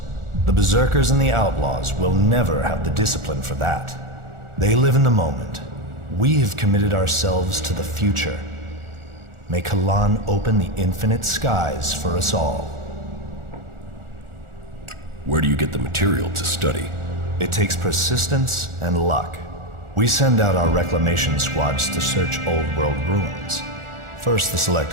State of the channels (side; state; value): left; late; 1.4 ms